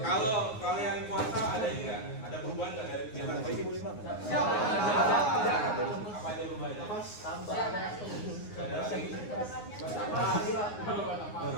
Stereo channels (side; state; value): right; late; 9.6 ms